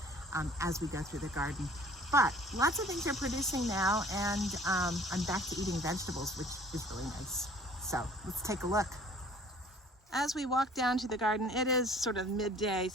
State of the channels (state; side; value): normal; both; correlation 0.51